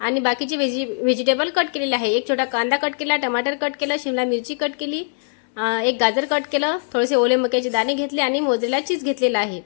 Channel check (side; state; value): right; silent; 65 dB below the other